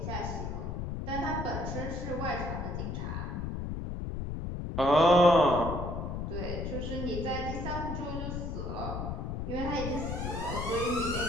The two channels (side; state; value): left; noise; rumble, 4 dB below the sound